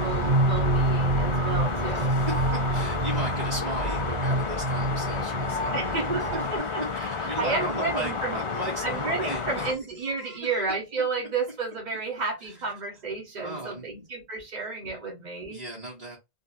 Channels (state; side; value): late; left; 1.9 ms